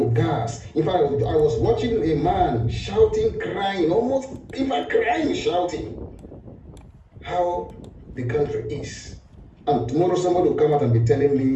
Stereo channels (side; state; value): both; identical; correlation 1.00